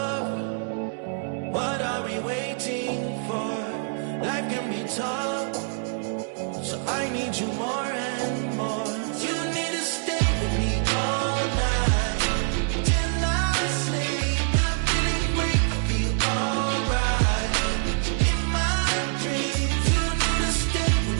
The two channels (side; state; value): left; silent; 61 dB below the other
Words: What are we waiting for? Life can be tough, so I need you more and more. You need to stay with me all night till I sleep. I'm feeling great, I'll be alright. In my dreams, you need to stay